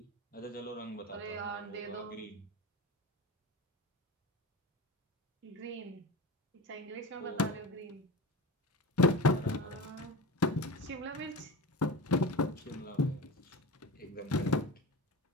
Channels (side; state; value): both; normal; correlation 0.28